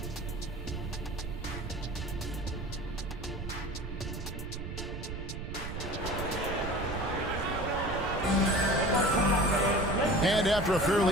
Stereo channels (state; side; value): noise; right; rumble, 7 dB below the sound